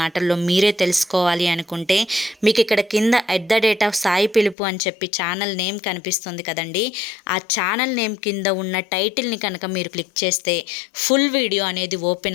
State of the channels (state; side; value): drops out; right; at 4.5 s